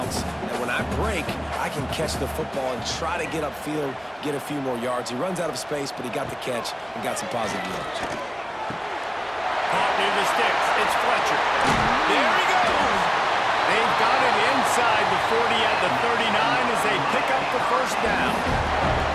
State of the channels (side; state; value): both; identical; correlation 1.00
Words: that when I break, I can catch the football and try to get upfield, get a few more yards. He runs out of space, but he got the catch and got some positive yards. Caught near the sticks. It's Fletcher. There he goes. They've got it inside the 40 at the 39 as they pick up the first down.